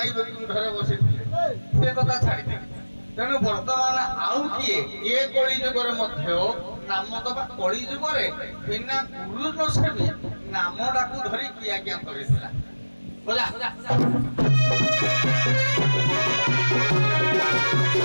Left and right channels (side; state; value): both; inverted; correlation -1.00